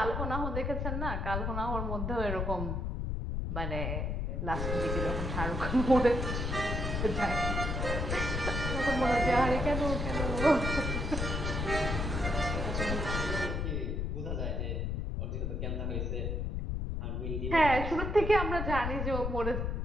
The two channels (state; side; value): noise; left; rumble, 1 dB below the sound